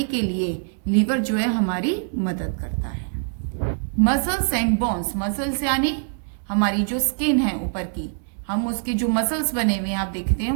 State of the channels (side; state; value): left; silent; digital silence